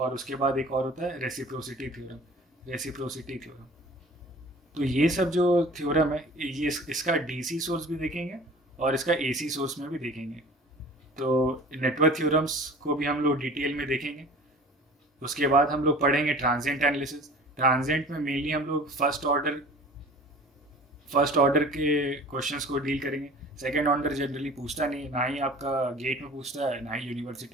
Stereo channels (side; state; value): both; normal; correlation 0.44